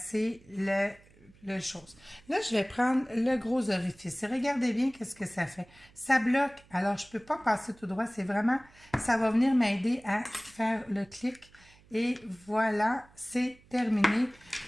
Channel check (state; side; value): noise; right; hum, 27 dB below the sound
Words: le chose. Là, je vais prendre le gros orifice. Et regardez bien qu'est-ce que ça fait. Ça bloque. Alors, je ne peux pas passer tout droit. C'est vraiment, ça va venir m'aider à faire le clic. Et voilà, c'est terminé